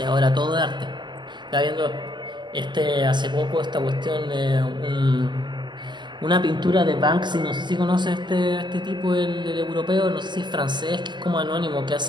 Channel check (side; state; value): left; late; 0.22 ms